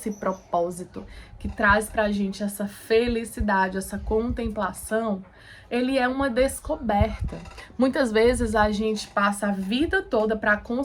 propósito que traz pra gente essa felicidade, essa contemplação, ele é uma descoberta. Muitas vezes a gente passa a vida toda para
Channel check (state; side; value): identical; both; correlation 1.00